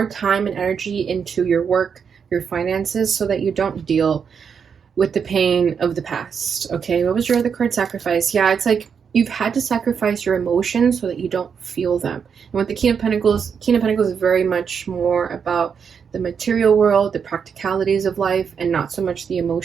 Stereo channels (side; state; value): left; quieter; 6.7 dB